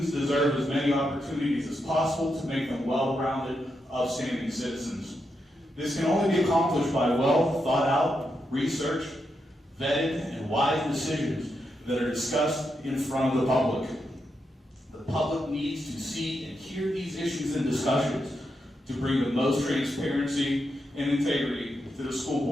deserve as many opportunities as possible to make them well-rounded, upstanding citizens. This can only be accomplished by well thought out, research, vetted, and wise decisions that are discussed in front of the public. The public needs to see and hear these issues and discussions to bring the most transparency and integrity to the school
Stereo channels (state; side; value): normal; both; correlation 0.84